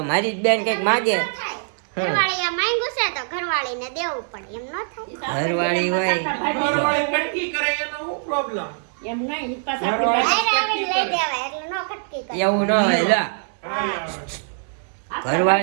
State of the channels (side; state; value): left; silent; digital silence